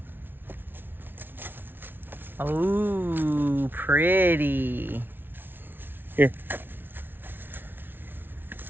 Oh, pretty. Here.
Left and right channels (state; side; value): late; left; 0.10 ms